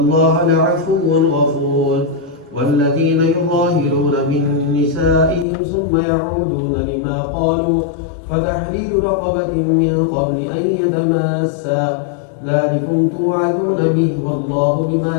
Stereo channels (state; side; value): drops out; right; at 5.5 s